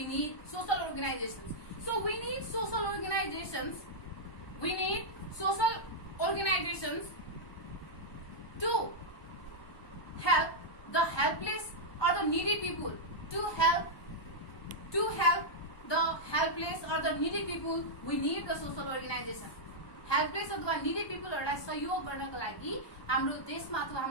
need social organizations? So we need social organizations. We need social organizations to help the helpless or the needy people. To help the helpless or the needy people, we need the social organization. Helpless अथवा needy पिपलहरूलाई सहयोग गर्नको लागि हाम्रो देशमा अथवा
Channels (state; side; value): late; right; 1.2 ms